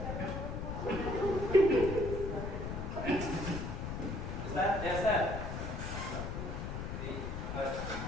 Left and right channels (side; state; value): left; noise; rumble, 4 dB below the sound